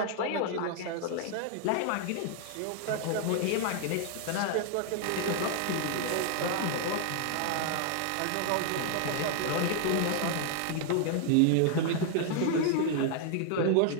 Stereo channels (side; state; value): both; different; correlation 0.00